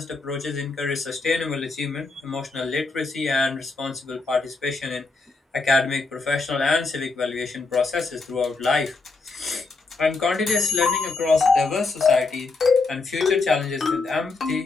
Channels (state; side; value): quieter; right; 3.9 dB